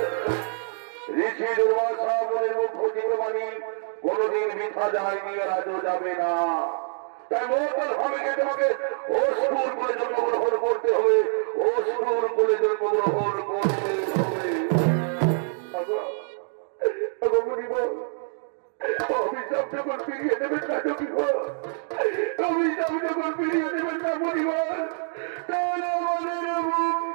ঋষি দুর্বাসা বলে মুখ্য জীববাণী কোনদিন মিথ্যা যায়নি আর আজও যাবে না তাই মঙ্গল হবে তোমাকে অসুর করে জন্মগ্রহণ করতে হবে অসুর করে জন্মগ্রহণ করতে হবে অভিশাপ যখন ফিরিয়ে দেবেন না কি অভিশাপ যখন ফিরিয়ে দেবেন না পরিবার তাহলে আমাদের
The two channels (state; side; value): silent; left; 61 dB below the other